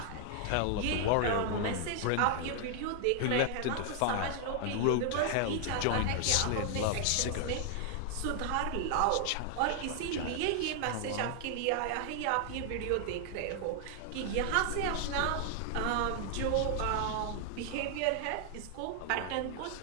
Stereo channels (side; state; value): both; different; correlation 0.00